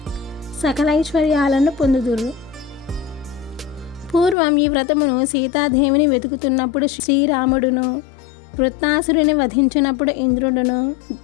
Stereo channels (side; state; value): right; drops out; at 4.4 s